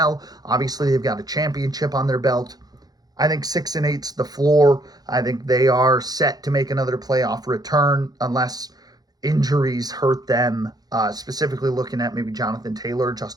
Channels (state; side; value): late; left; 0.19 ms